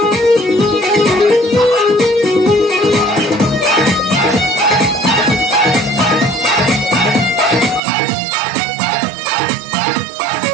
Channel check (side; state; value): left; drops out; at 7.8 s